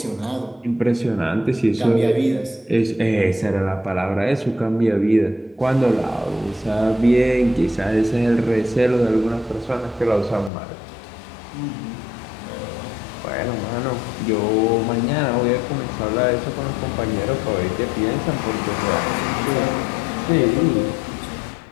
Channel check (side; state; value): right; drops out; at 10.5 s